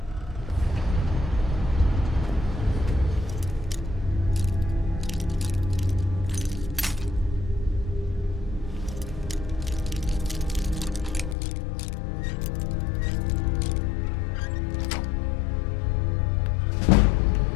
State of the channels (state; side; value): drops out; right; at 11.4 s